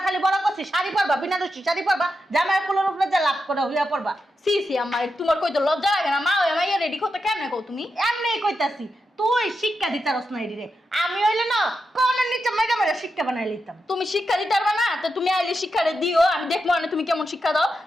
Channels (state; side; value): normal; both; correlation 0.87